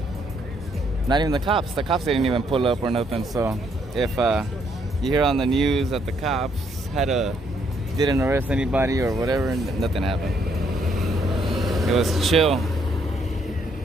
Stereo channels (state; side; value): normal; both; correlation 0.71